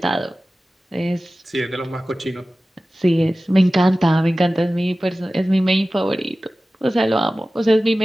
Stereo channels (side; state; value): both; normal; correlation 0.96